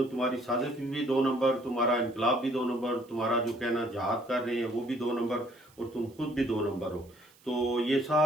तुम्हारी साजिश भी 2 नंबर, तुम्हारा इनकलाब भी 2 नंबर, तुम्हारा जो कहना जहाद कर रहे हैं वो भी 2 नंबर और तुम खुद भी 2 नंबर हो। तो ये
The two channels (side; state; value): right; noise; hiss, 29 dB below the sound